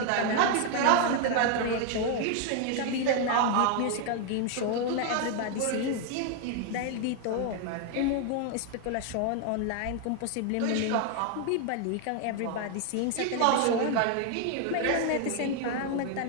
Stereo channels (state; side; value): different; both; correlation 0.00